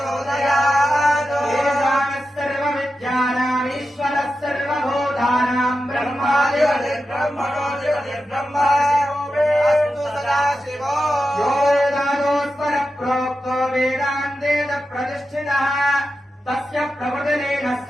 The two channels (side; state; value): both; normal; correlation 0.90